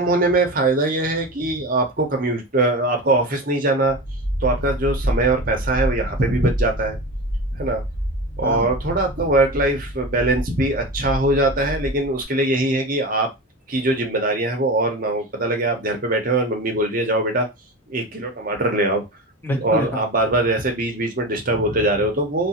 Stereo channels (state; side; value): normal; both; correlation 0.27